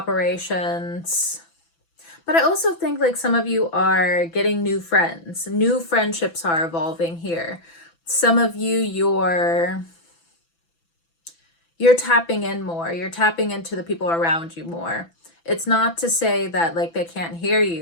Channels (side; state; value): right; late; 6.0 ms